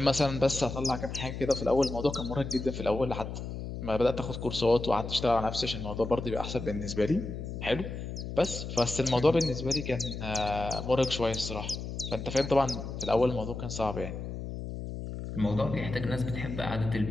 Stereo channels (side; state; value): left; noise; hum, 7 dB below the sound